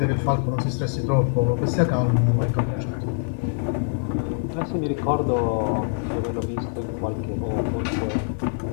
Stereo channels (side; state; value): right; silent; 62 dB below the other